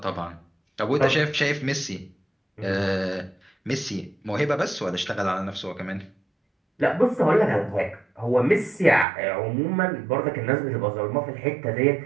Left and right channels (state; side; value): drops out; left; at 9.1 s